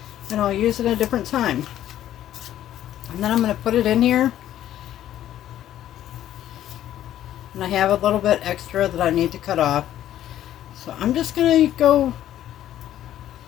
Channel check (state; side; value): quieter; right; 12.1 dB